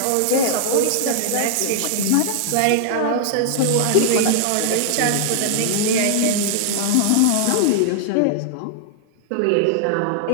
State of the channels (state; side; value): different; both; correlation -0.01